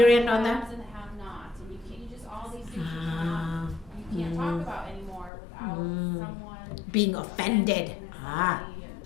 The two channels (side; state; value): right; drops out; at 5.3 s